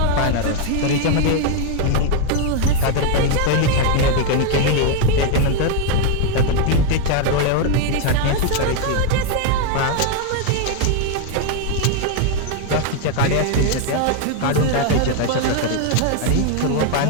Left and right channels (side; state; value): both; different; correlation 0.01